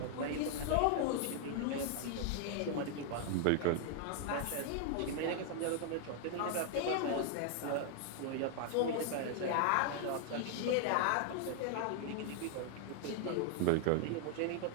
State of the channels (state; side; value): different; both; correlation 0.00